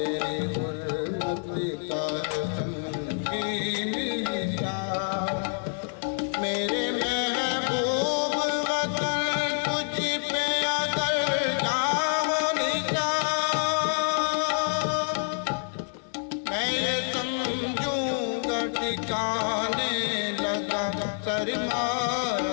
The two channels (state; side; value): silent; right; digital silence